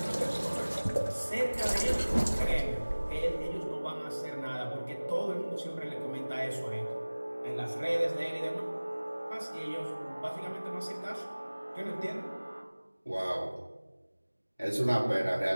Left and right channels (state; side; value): inverted; both; correlation -1.00